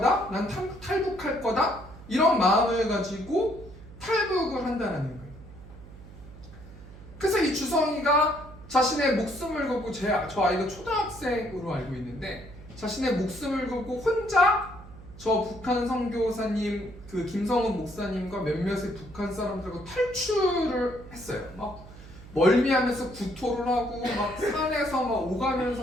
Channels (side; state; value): right; noise; hum, 17 dB below the sound